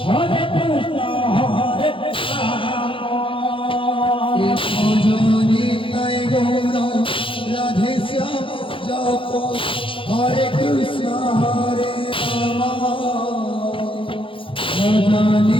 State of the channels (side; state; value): right; late; 0.25 ms